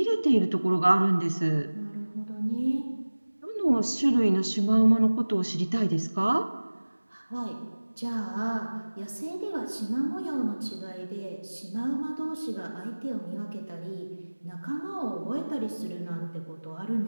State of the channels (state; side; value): inverted; both; correlation -1.00